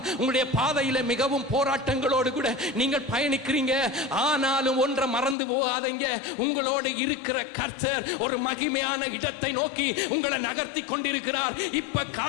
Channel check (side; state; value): right; drops out; at 5.4 s